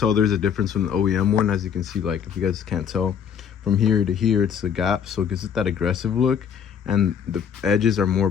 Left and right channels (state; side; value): quieter; right; 7.8 dB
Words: there's a difference from the OEM one. As you can see, like, if you guys can't tell, from here to here it's a gap, so it gives it that aggressive look, and the edges are more